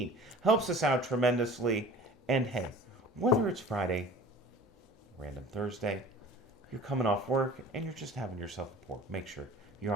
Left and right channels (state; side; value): normal; both; correlation 0.43